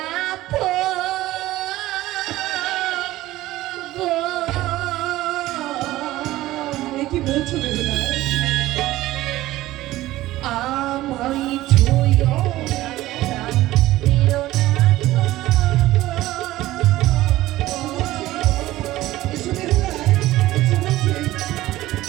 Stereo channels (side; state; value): left; quieter; 16.3 dB